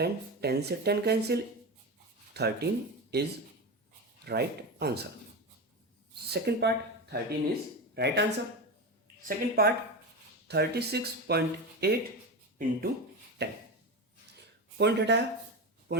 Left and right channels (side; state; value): both; normal; correlation 0.20